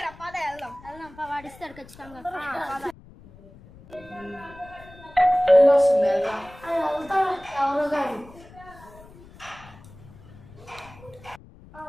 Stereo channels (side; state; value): left; noise; rumble, 21 dB below the sound